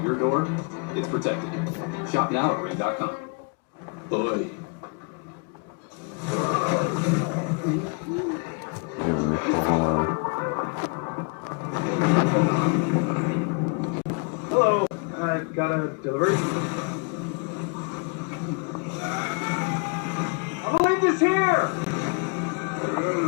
your door, it's protected. Shop now at ring.com. Boy. Hello, I've got a delivery. I believe this here.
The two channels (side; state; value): right; quieter; 35.6 dB